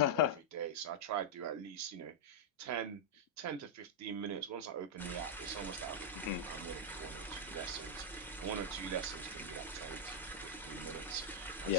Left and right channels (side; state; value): both; normal; correlation -0.04